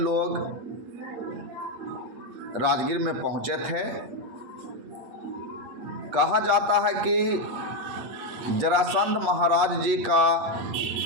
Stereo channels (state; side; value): late; left; 8.6 ms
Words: राजगीर में पहुंचे थे। कहा जाता है कि जरासंध महाराज जी का